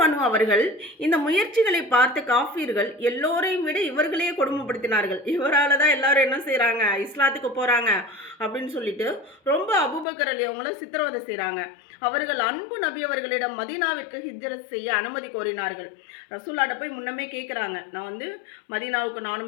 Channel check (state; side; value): drops out; right; at 10.1 s